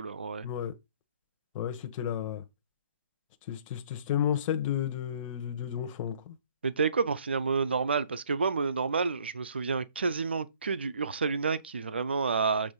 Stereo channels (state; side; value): inverted; both; correlation -0.58